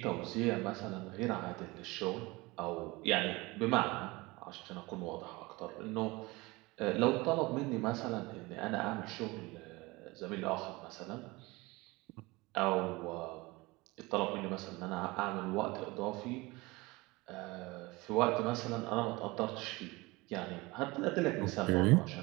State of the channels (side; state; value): left; quieter; 22.9 dB